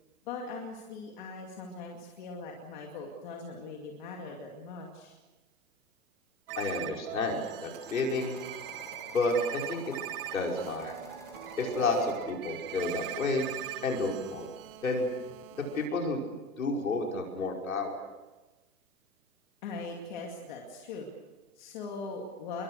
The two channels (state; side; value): normal; both; correlation 0.33